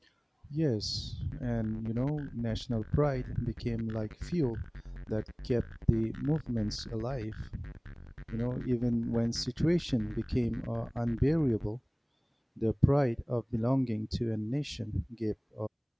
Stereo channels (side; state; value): both; identical; correlation 1.00